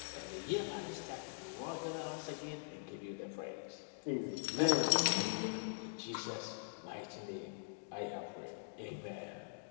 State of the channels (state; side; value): silent; right; digital silence